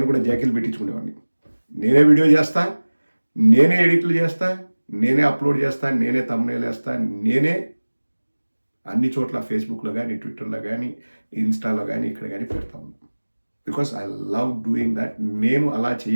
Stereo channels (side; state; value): both; inverted; correlation -1.00